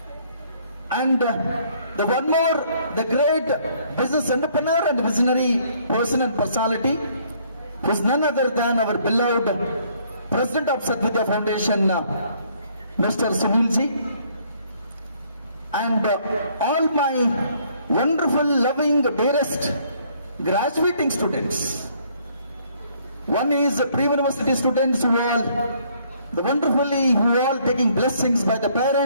And the one more, the great business entrepreneur and visionary person and personality, who is none other than our beloved President of Sadvidya Foundation, Mr. Sunil ji, and all my wonderful, loving, dearest graduating students. One is pre-university students who all taking blessings by the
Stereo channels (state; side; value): inverted; both; correlation -0.64